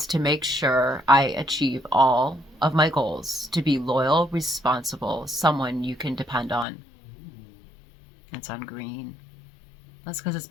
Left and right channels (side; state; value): right; drops out; at 6.7 s